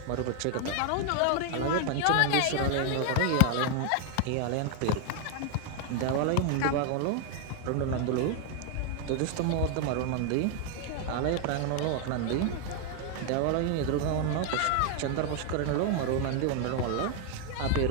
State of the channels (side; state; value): both; different; correlation 0.01